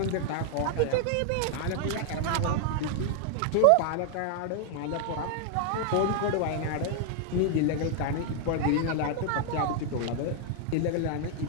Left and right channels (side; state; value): both; different; correlation 0.00